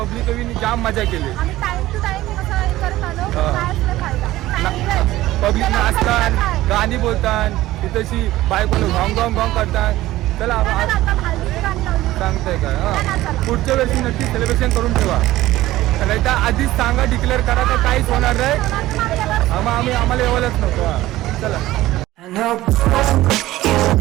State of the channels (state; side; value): quieter; left; 16.2 dB